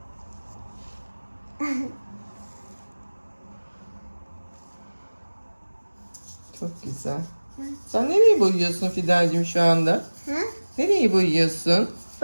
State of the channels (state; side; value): inverted; both; correlation -1.00